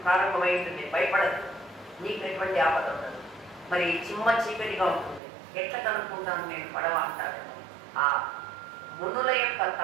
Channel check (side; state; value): left; drops out; at 5.2 s